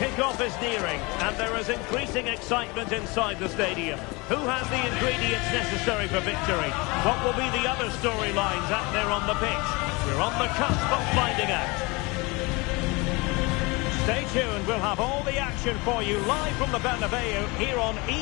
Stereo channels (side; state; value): right; quieter; 26.0 dB